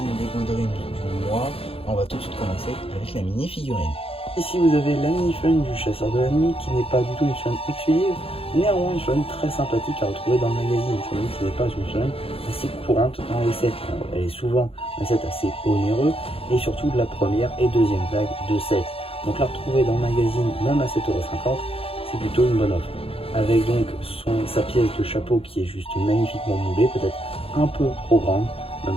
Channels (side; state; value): right; late; 0.27 ms